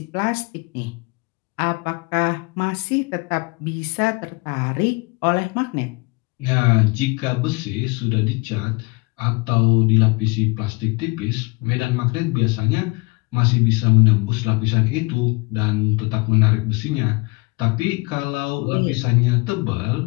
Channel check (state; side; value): quieter; right; 27.0 dB